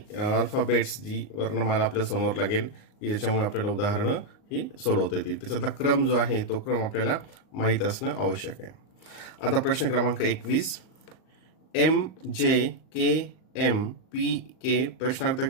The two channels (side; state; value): right; late; 38 ms